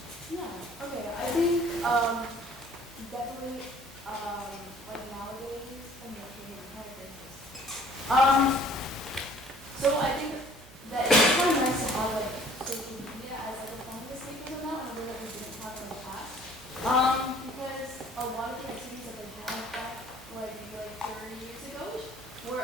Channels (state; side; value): noise; right; hum, 23 dB below the sound